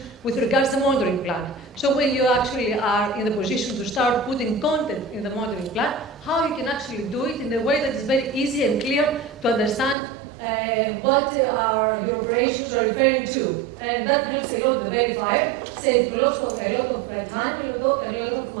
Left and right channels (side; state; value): left; drops out; at 10.0 s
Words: with regards to the monitoring plan. So when you actually are in the position to start putting content in the monitoring plan, how you can actually do it in a way that is very easy and clear to understand what your operations are referring to. And that helps a lot the verifier, save a lot of time and a lot of